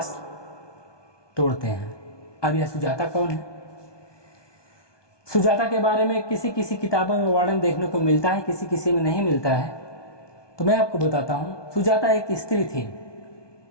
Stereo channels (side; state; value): right; late; 1.2 ms